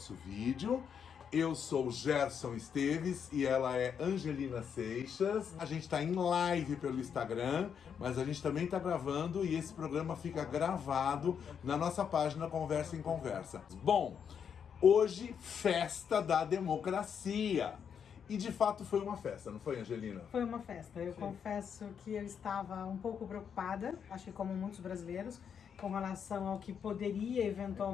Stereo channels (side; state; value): right; quieter; 7.4 dB